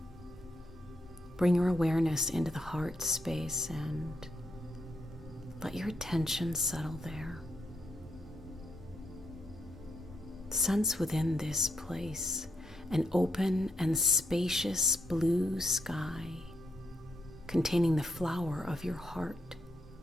Bring your awareness into the heart space and let your attention settle there. Sense within this place an open and spacious blue sky containing the flower of your heart,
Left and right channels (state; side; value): normal; both; correlation 0.79